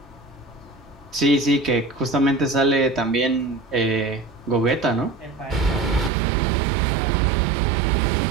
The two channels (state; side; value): drops out; left; at 6.1 s